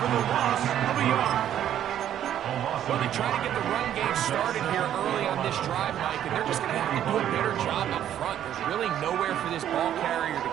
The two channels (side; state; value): left; quieter; 10.8 dB